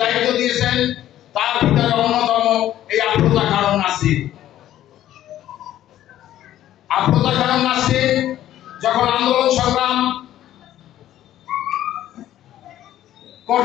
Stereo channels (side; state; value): right; quieter; 12.7 dB